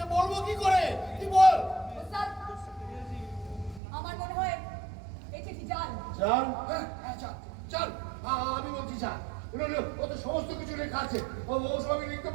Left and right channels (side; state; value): left; drops out; at 3.8 s